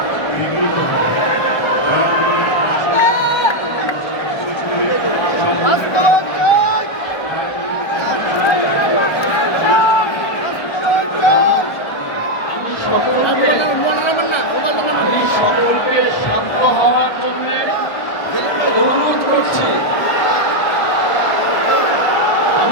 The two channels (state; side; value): late; right; 1.3 ms